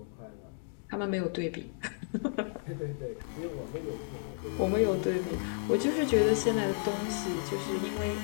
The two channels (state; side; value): silent; right; 56 dB below the other